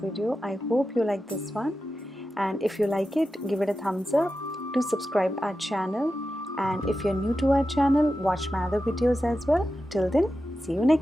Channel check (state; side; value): normal; both; correlation 0.92